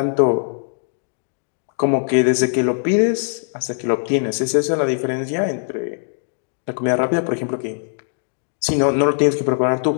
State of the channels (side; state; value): right; silent; digital silence